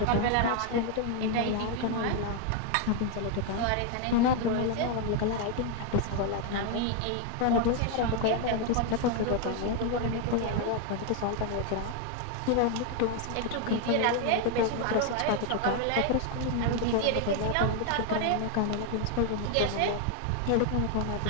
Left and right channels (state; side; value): different; both; correlation 0.00